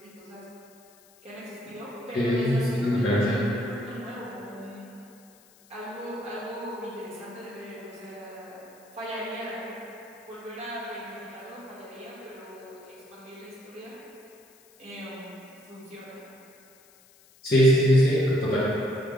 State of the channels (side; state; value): left; noise; hiss, 27 dB below the sound